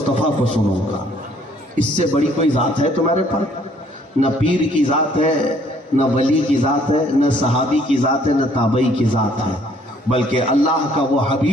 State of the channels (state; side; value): normal; both; correlation 0.62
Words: کو سنوں گا، اس سے بڑی کوئی ذات ہے تمہارے پر؟ نہ پیر کی ذات ہے، نہ ولی کی ذات ہے، نہ صحابی کی ذات ہے، نہ تابعی کی ذات ہے، بلکہ اللہ کا وہ